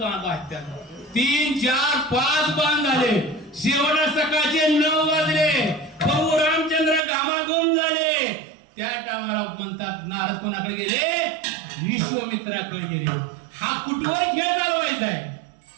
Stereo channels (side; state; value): left; drops out; at 7.0 s